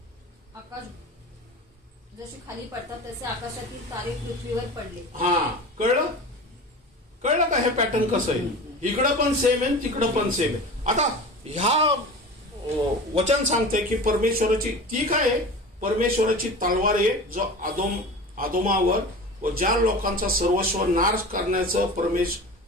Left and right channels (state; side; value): normal; both; correlation 0.34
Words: आकाश जशी खाली पडतात तसे आकाशातील तारे पृथ्वीवर पडले. कळलं का हे पॅटर्न कसं आहे? इकडं पण सेम आहे तिकडं पण सेम आहे. आता ह्या वचन सांगते की परमेश्वराची ती काय आहे? परमेश्वराची तलवार आहे जो आदोमावर व ज्या लोकांचा सर्वस्व नाश करण्याचं